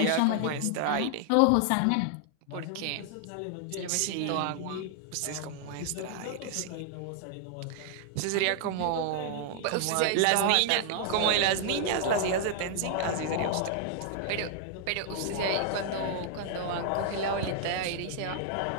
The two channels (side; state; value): both; different; correlation 0.00